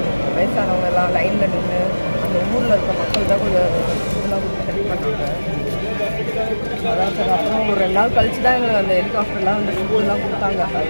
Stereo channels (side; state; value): both; inverted; correlation -1.00